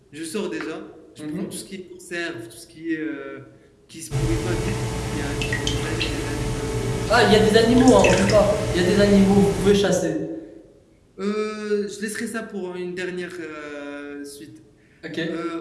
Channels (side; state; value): both; identical; correlation 1.00